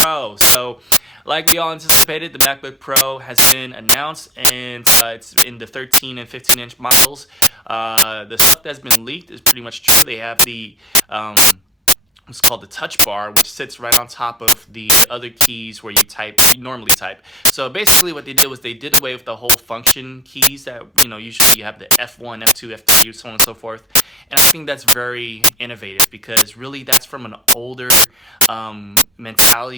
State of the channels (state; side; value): normal; both; correlation 0.32